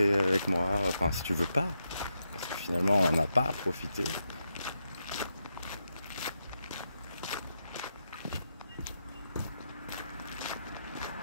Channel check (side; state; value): both; inverted; correlation -0.84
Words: avec moi, enfin si tu veux pas, parce que finalement on n'a pas à profiter.